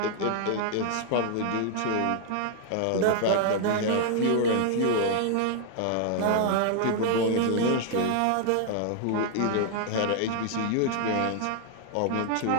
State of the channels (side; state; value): both; different; correlation 0.00